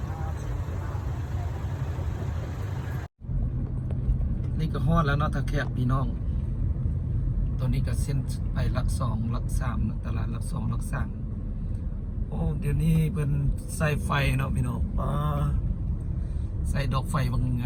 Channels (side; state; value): both; identical; correlation 1.00